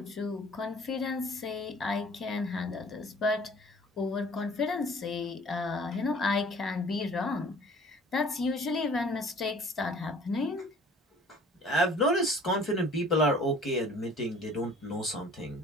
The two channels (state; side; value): normal; both; correlation 0.51